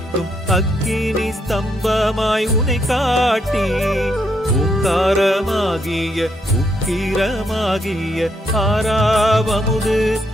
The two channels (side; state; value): both; normal; correlation 0.76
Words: அக்கினி ஸ்தம்பமாய் உனை காட்டி ஓங்காரமாகிய உக்கிரமாகிய ஆறாவமுது